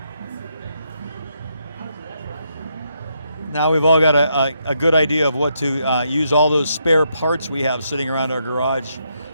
Now we've all got a good idea of what to use all those spare parts we have sitting around our garage.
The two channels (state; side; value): inverted; both; correlation -0.78